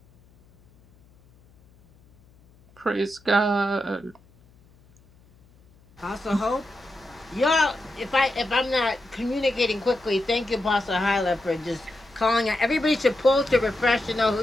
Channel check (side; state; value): left; noise; hum, 29 dB below the sound